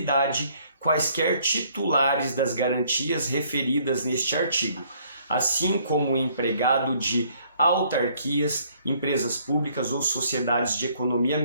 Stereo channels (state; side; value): inverted; both; correlation -0.64